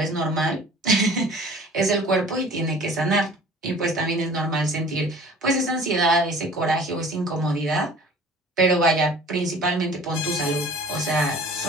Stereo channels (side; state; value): both; normal; correlation 0.47